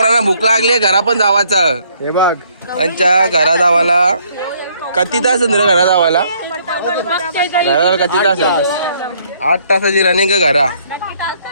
भूक लागली घरा पण जावाचा. हे बघ त्यांच्या घरा जावाला किती तास घरा जावाला? घरा किती तास? 8 तासाची रनिंग घरा.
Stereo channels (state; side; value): inverted; both; correlation -0.66